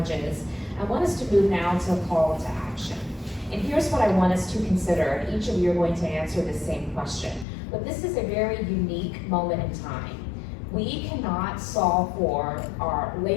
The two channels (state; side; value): drops out; right; at 7.5 s